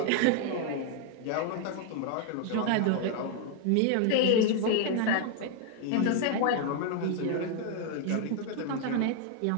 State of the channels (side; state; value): both; different; correlation 0.00